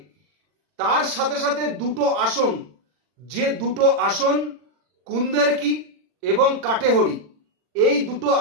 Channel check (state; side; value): late; left; 40 ms